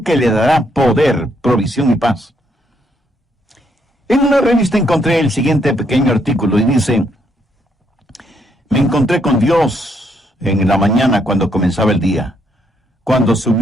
que le dará poder, provisión y paz. En una revista encontré el siguiente pequeño artículo y dice: me encontré con Dios en la mañana cuando comenzaba el día, cuando su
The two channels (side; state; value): both; normal; correlation 0.74